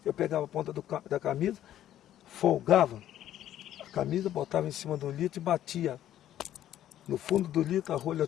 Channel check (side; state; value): right; quieter; 12.0 dB